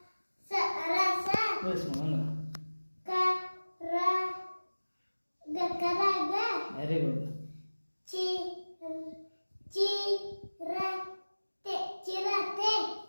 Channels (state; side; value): inverted; both; correlation -1.00